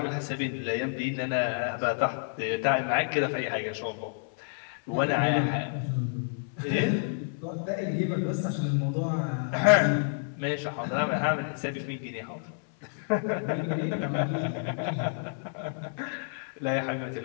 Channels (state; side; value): silent; right; 58 dB below the other